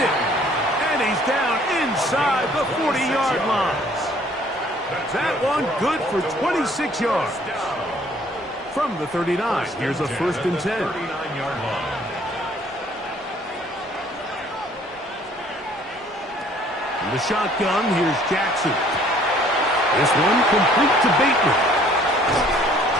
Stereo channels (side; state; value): both; normal; correlation 0.58